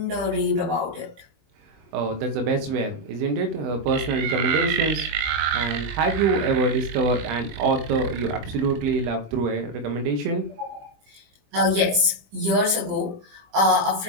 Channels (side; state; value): left; late; 20 ms